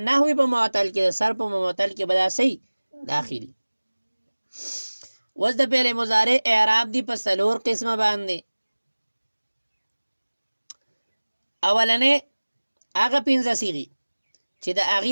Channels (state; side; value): inverted; both; correlation -1.00